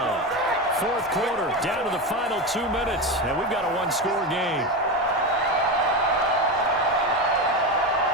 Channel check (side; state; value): both; normal; correlation 0.18